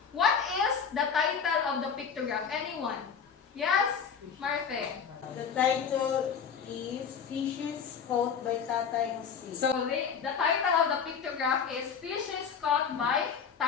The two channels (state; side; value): quieter; right; 6.7 dB